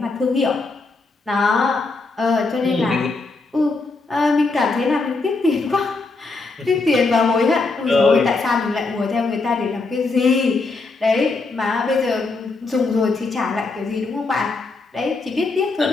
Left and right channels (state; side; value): quieter; right; 3.7 dB